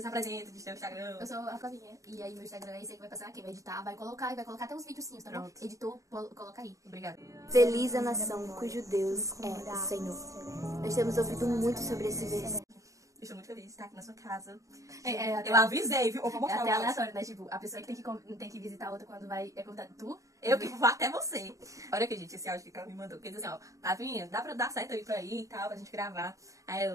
diz teu Instagram. Eu sou a Flavinha. E aí meu Instagram é esse aí que vai passar aqui. Vai editar, vai colocar até uns videozinhos, tá bom? Pronto. Editor, coloca aí. Obrigada. Feliz a nação cujo Deus é o Senhor. Nós temos ouvido muito sobre esse versículo. Estou muito feliz de estar aqui na sua casa. Até Eu avisei, viu? Eu vou é mostrar até o aleatório, né? Tipo, a pessoa que tem que visitar a outra quando vai é convidada. Tu? Eu que vou até você. Olha aqui, gente, esse áudio que ela me mandou. Porque diz assim, ó, Flavinha, dá pra dar certo aí pra ir e tal, pra gente gravar.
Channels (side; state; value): left; late; 0.16 ms